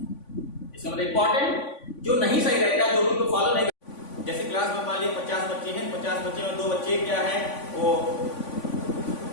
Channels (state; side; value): late; right; 3.5 ms